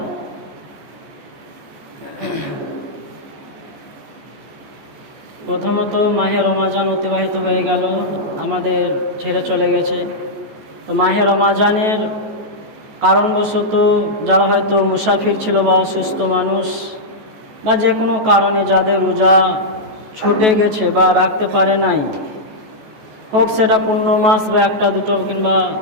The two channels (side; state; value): left; late; 14 ms